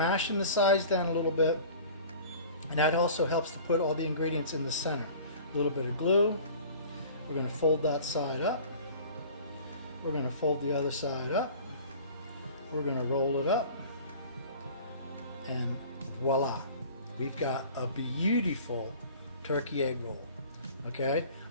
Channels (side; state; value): both; inverted; correlation -0.44